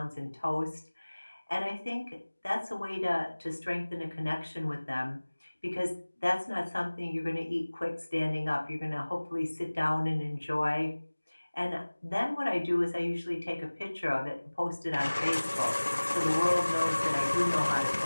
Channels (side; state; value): both; inverted; correlation -1.00